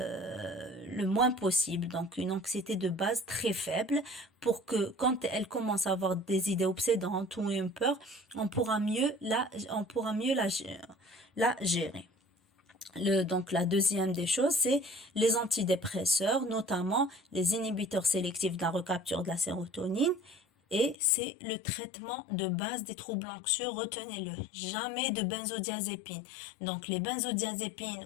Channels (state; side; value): drops out; right; at 21.0 s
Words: possible, donc une anxiété de base très faible, pour que quand elle commence à avoir des idées obsédantes ou une peur, on pourra mieux la gérer. Donc la deuxième des choses, c'est les antidépresseurs, notamment les inhibiteurs sélectifs de la recapture de la sérotonine. Et c'est le traitement de base des troubles anxieux, retenez-le, jamais de benzodiazépine. Donc les benzodiazépines